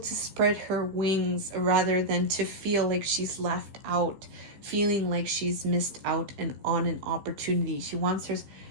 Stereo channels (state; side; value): late; left; 15 ms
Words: spread her wings rather than to feel like she's left out, feeling like she's missed out on an opportunity. She wants her